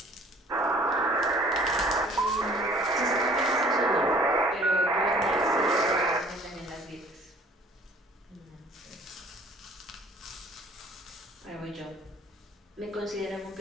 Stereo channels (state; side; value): normal; both; correlation 0.53